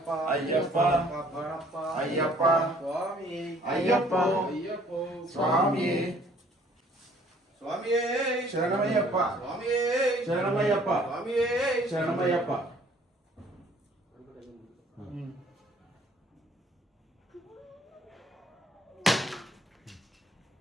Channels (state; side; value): normal; both; correlation 0.58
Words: ಅಯ್ಯಪ್ಪ ಕಬ್ಬಣಪ್ಪ ಅಯ್ಯಪ್ಪ ಸ್ವಾಮಿಯೇ ಅಯ್ಯಪ್ಪ ಅಯ್ಯಪ್ಪ ಸ್ವಾಮಿಯೇ ಸ್ವಾಮಿಯೇ ಶರಣಮಯ್ಯಪ್ಪ ಸ್ವಾಮಿಯೇ ಶರಣಮಯ್ಯಪ್ಪ ಸ್ವಾಮಿಯೇ ಶರಣಮಯ್ಯಪ್ಪ.